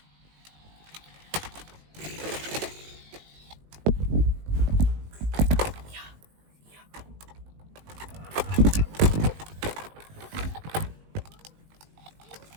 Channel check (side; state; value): left; late; 19 ms